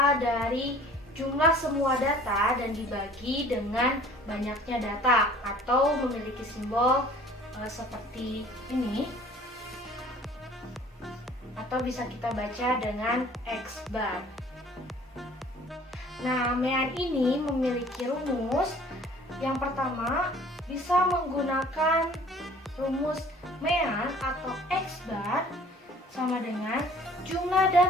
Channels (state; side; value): normal; both; correlation 0.51